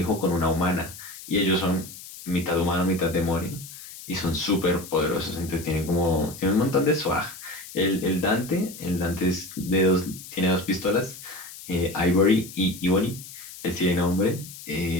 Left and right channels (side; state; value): left; noise; hiss, 15 dB below the sound